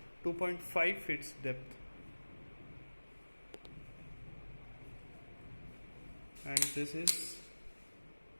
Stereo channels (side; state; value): both; inverted; correlation -1.00